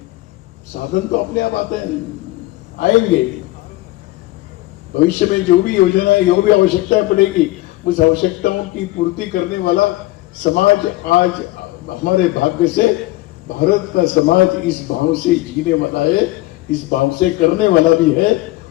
साधन तो अपने आप आते हैं, आएंगे। भविष्य में जो भी योजना है, जो भी आवश्यकता पड़ेगी, उस आवश्यकताओं की पूर्ति करने वाला समाज आज हमारे भाग्य से भारत का समाज इस भाव से जीने वाला है, इस भाव से करने वाला भी है।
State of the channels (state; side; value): quieter; right; 18.4 dB